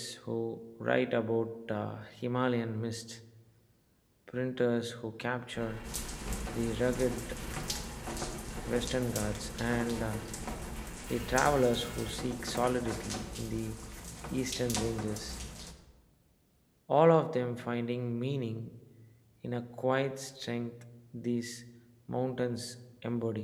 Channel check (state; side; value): identical; both; correlation 1.00